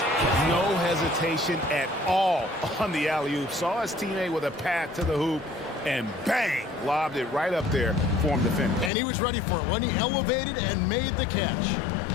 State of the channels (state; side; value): drops out; right; at 8.9 s